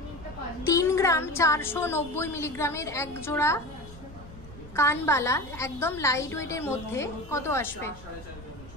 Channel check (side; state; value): left; noise; rumble, 18 dB below the sound